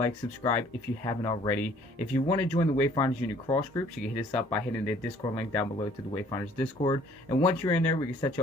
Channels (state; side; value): normal; both; correlation 0.57